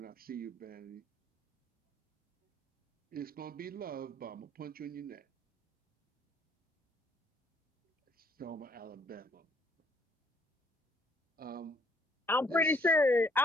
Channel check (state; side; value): normal; both; correlation 0.64